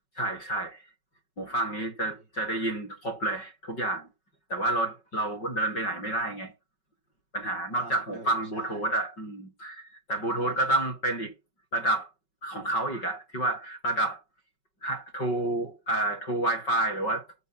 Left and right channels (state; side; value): late; right; 5.3 ms